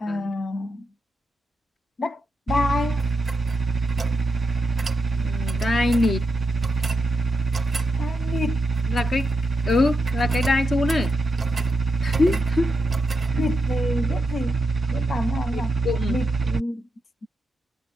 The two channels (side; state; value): both; normal; correlation 0.85